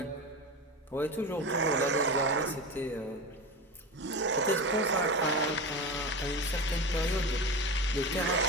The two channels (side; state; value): both; normal; correlation 0.24